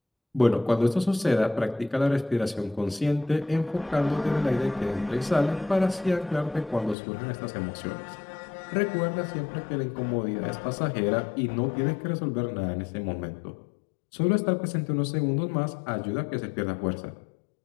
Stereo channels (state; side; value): drops out; right; at 7.0 s